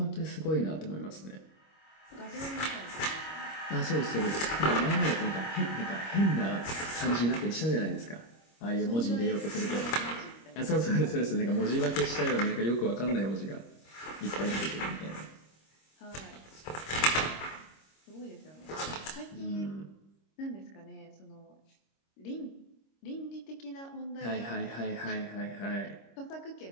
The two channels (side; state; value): right; late; 26 ms